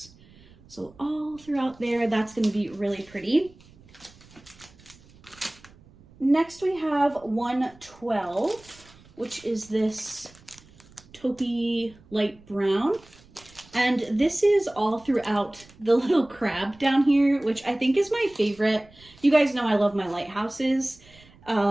So all throughout there, that's going to be really pretty. Next we have 112, which is this taupey light brown. And this is all throughout the little crab down here, which I think is my favorite. You guys know I love my lighthouses.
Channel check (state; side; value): noise; right; rumble, 25 dB below the sound